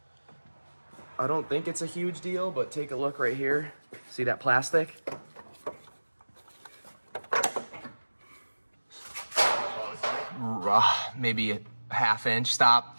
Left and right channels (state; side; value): inverted; both; correlation -1.00